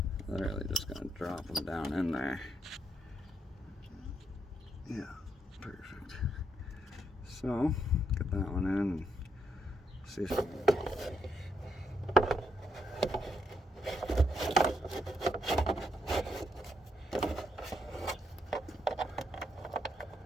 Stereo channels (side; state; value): both; normal; correlation 0.76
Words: literally just going to drop him down in there. Yeah, perfect. So, get that one in and see if